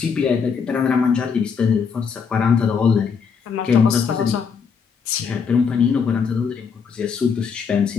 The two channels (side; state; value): right; quieter; 6.1 dB